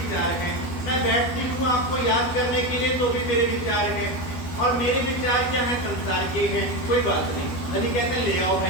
हैं। मैं बैठती हूँ आपको याद करने के लिए, तो भी मेरे विचार हैं, और मेरे विचार क्या हैं, संसार के हैं। कोई बात नहीं, धनी कहते हैं ले आओ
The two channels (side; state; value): right; late; 12 ms